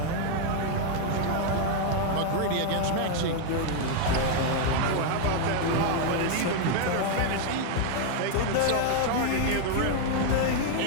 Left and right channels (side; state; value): both; different; correlation 0.00